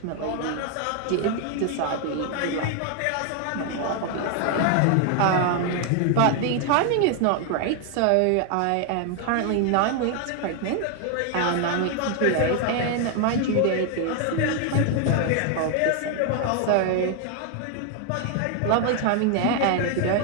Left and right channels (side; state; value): both; different; correlation 0.00